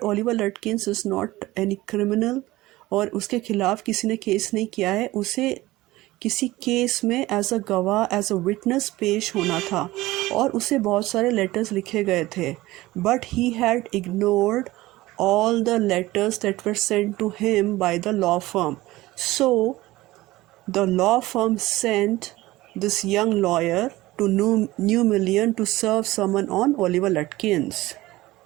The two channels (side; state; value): left; quieter; 18.2 dB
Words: Oliver Lutkins is not any criminal, और उसके खिलाफ किसी ने केस नहीं किया है। उसे किसी केस में एज अ गवाह, एज अ विटनेस पेश होना था, और उसे बहुत सारे लेटर्स लिखे गए थे। But he had ignored all the letters that were sent to him by the law firm. So the law firm sent this young lawyer to New Million to serve someone on Oliver Lutkins.